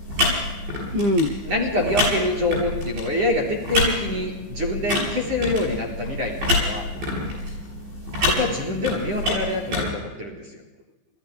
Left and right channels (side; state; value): left; late; 15 ms